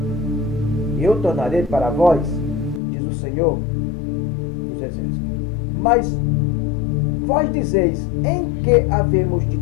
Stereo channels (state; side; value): drops out; right; at 2.8 s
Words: e eu tornarei para vós, diz o Senhor dos Exércitos. Mas vós dizeis, em que havemos de